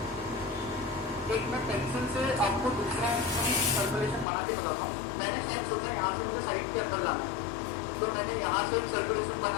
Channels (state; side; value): drops out; right; at 4.2 s